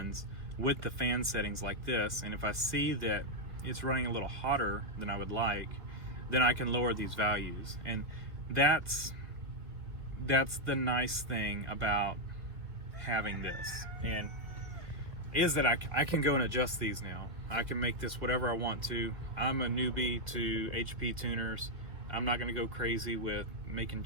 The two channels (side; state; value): left; late; 1.6 ms